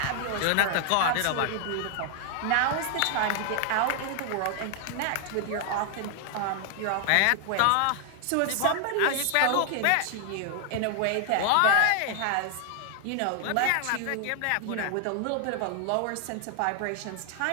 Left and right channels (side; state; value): both; different; correlation 0.00